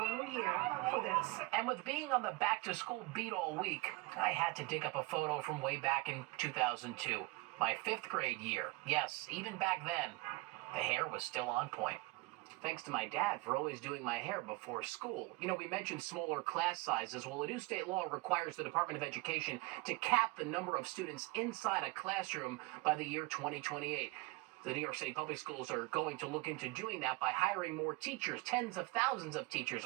new year for this. And with being on the back-to-school beat all week, I had to dig up a photo from way back in 2002, my 5th grade year. Yes, even back then, the hair was still on point. Thanks to my dad for always doing my hair before school. You know, we mentioned smaller class sizes. Well, a new state law requires the Department of Education to cap the number of students inside a classroom by the year 2028. The New York City Public Schools are going to look into doing that by hiring more teachers, tens of thousands of teachers,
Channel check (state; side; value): quieter; left; 23.4 dB